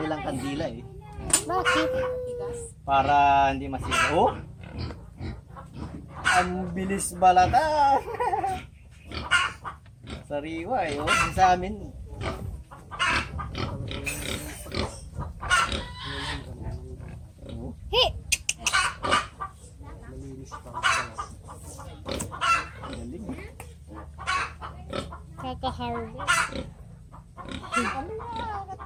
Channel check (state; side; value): identical; both; correlation 1.00